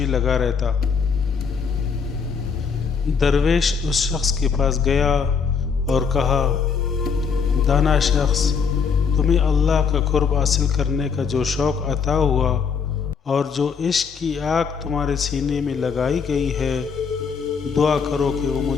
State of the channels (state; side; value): quieter; right; 6.0 dB